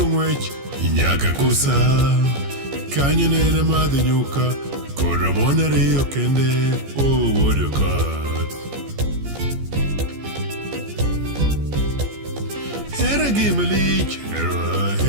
ng'wech nyaka kusa, kanyo nene madho nyuka kod rabuon ariyo kende owuodo kath. Hera gi malich,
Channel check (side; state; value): left; late; 14 ms